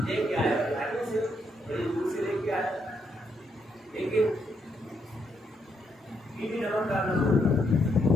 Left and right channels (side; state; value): both; normal; correlation 0.76